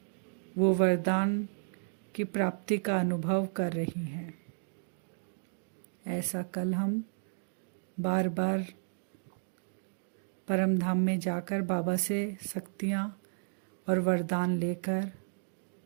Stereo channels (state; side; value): silent; left; digital silence